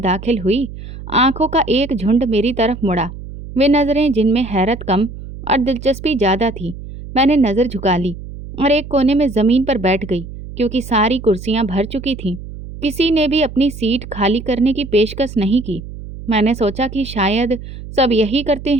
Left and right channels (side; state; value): right; noise; hum, 12 dB below the sound